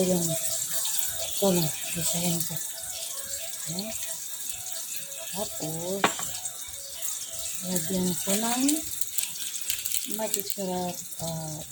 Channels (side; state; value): both; identical; correlation 1.00